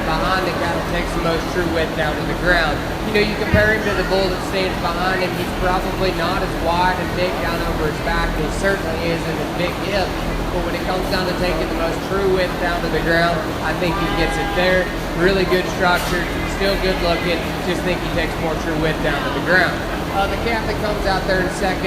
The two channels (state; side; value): identical; both; correlation 1.00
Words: behind the cattle takes the most true width down to the ground. You know, you compare him to the bull that stands behind him, he's probably not as wide and big down over his back, and he certainly isn't as big hip. But when it comes down to taking the most true width down to the ground, I think he gets it there. Really good structure, still good looking, just think he takes more true width down to the ground. The calf that comes out there in